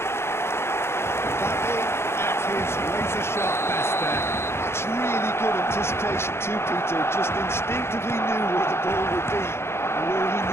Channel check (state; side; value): late; right; 0.12 ms